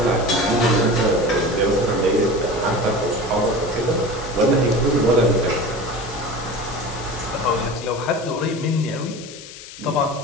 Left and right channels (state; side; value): noise; left; hiss, 15 dB below the sound